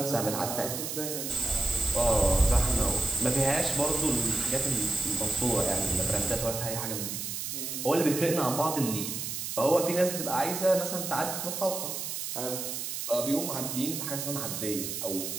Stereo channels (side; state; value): right; noise; hiss, 4 dB below the sound